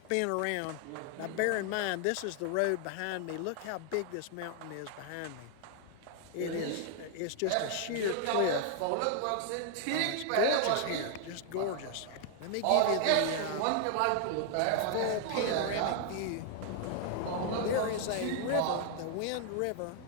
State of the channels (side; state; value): both; different; correlation 0.00